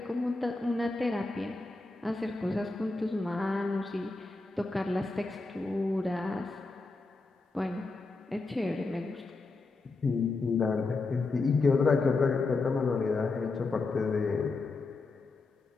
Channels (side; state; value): right; quieter; 3.6 dB